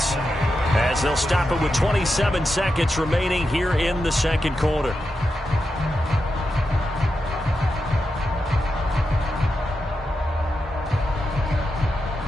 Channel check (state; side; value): normal; both; correlation 0.88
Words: as they'll stop it with 27 seconds remaining here in the second quarter.